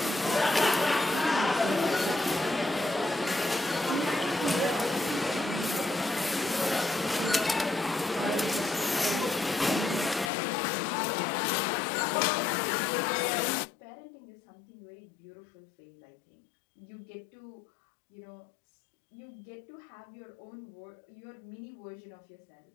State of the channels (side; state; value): right; drops out; at 10.3 s